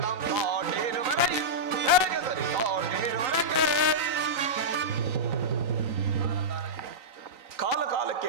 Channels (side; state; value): left; late; 3.9 ms